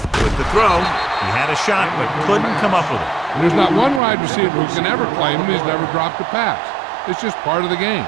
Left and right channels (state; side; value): drops out; left; at 4.0 s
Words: with the throw. He had a shot, but couldn't come up with it. And there's not one wide receiver who can ever claim he's never dropped a pass. It's just part of the game.